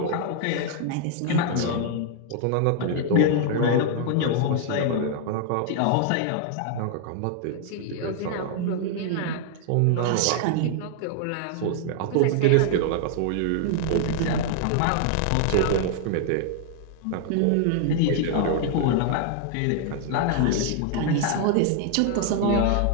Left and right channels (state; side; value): different; both; correlation 0.00